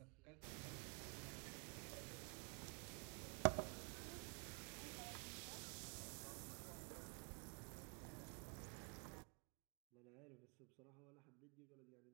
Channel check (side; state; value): left; quieter; 38.8 dB